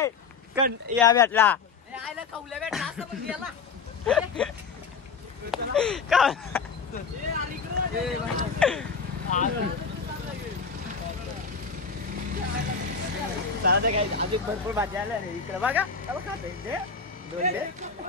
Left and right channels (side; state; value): right; quieter; 5.3 dB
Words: या भेटला चला काय अजून भरपूर भाजी आल्या रे इकडे बघा.